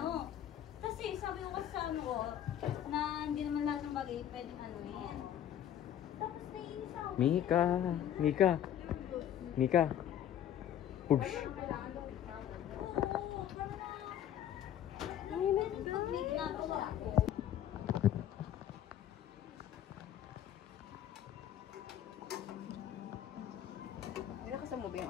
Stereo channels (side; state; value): right; quieter; 10.8 dB